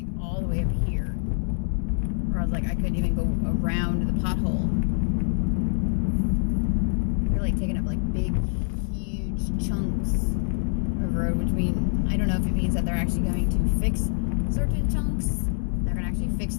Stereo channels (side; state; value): right; silent; digital silence